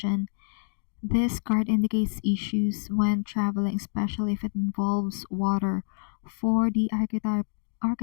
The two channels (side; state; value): right; silent; digital silence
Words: This card indicates issues when traveling, especially if it involves water. For the